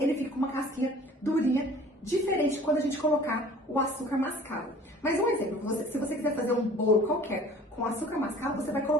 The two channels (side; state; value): both; normal; correlation 0.48